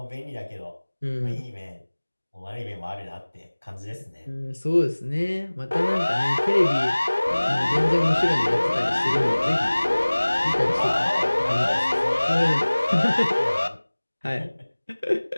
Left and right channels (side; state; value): both; inverted; correlation -1.00